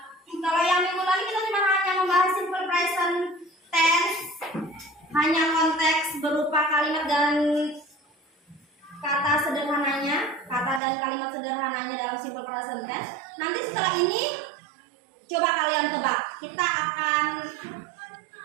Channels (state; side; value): drops out; left; at 10.8 s